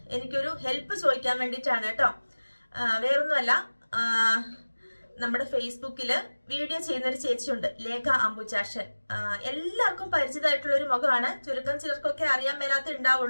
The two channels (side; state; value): both; inverted; correlation -1.00